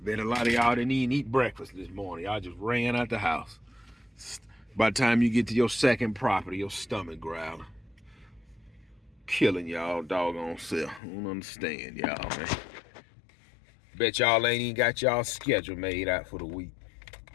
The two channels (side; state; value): right; drops out; at 11.0 s